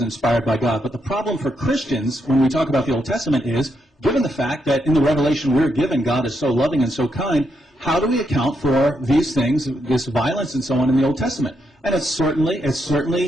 by God, but the problem for Christians when we talk about the Old Testament is, given the fact that in the revelation we're given, God is so loving and so kind, how do we account for these things, this violence and so on in the Old Testament? And it's certainly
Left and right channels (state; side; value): normal; both; correlation 0.80